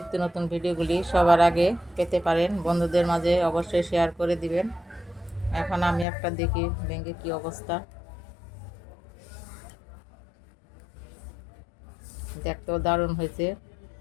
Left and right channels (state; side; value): drops out; right; at 6.1 s